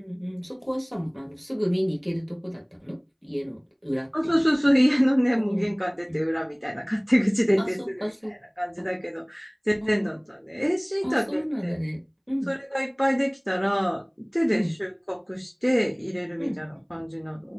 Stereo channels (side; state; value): both; identical; correlation 1.00